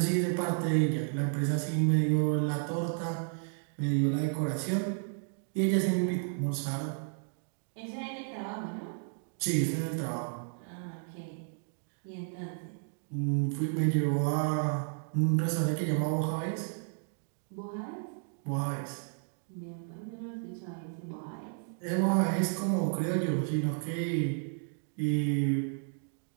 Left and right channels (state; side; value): silent; left; 56 dB below the other